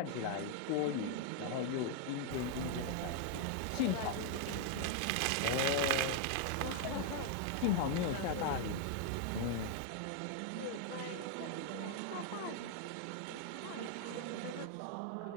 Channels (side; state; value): both; different; correlation 0.00